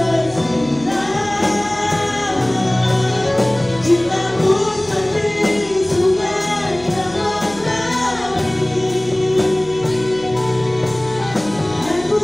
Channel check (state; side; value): noise; right; hum, 19 dB below the sound